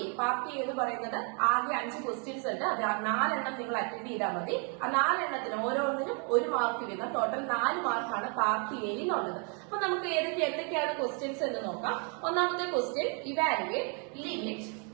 എന്ന് പറയുന്നത് ആകെ 5 ക്വസ്റ്റ്യൻസ് ഉണ്ട്. അത് 4 എണ്ണം നിങ്ങൾ അറ്റൻഡ് ചെയ്താൽ മതി. ആ 4 എണ്ണത്തിന് ഓരോന്നിനും 1 മാർക്ക് വീതം ടോട്ടൽ 4 മാർക്കാണ് പാർട്ടി എ എന്നുള്ളത്. അപ്പൊ നമുക്ക് എന്തൊക്കെയാണ് ക്വസ്റ്റ്യൻസ് എന്ന് നോക്കാം. ഒന്നാമത്തെ question evaluate limit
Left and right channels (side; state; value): left; quieter; 37.6 dB